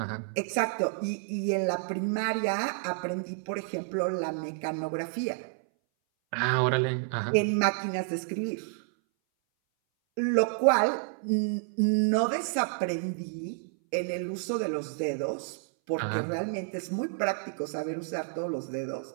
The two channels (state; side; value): silent; left; 58 dB below the other